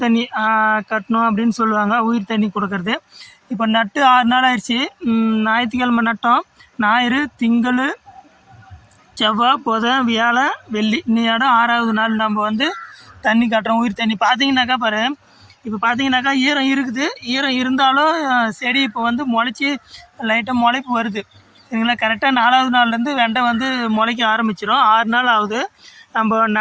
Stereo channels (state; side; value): identical; both; correlation 1.00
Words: தண்ணி கட்டணும் அப்படின்னு சொல்லுவாங்க, உயிர் தண்ணி கொடுக்கறது. இப்போ நட்டு 6 நாள் ஆயிடுச்சு. ஞாயிற்றுக்கிழமை நட்டோம். ஞாயிறு, திங்கள், செவ்வாய், புதன், வியாழன், வெள்ளி, இன்னையோட 6வது நாள் நம்ம வந்து தண்ணி கட்டுறோம், உயிர் தண்ணி. பார்த்தீங்கன்னாக்கா பாரு, இப்போ பார்த்தீங்கன்னாக்கா ஈரம் இருக்குது. ஈரம் இருந்தாலும் செடி இப்போ வந்து முளைச்சி லைட்டாக முளைப்பு வருது, சரிங்களா. கரெக்டாக 4வது நாள்லேருந்து வெண்டை வந்து முளைக்க ஆரம்பிச்சிடும். 6 நாள் ஆகுது. நம்ம